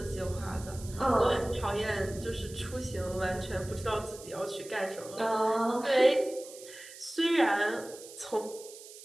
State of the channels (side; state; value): right; noise; hiss, 16 dB below the sound